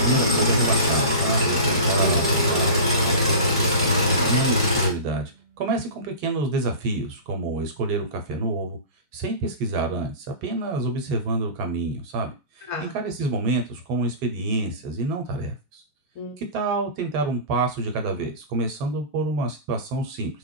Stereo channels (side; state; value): both; inverted; correlation -0.32